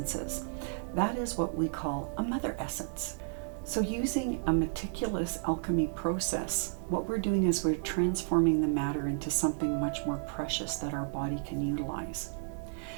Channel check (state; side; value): silent; left; digital silence